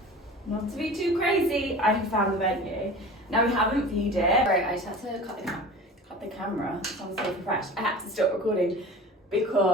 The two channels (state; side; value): normal; both; correlation 0.38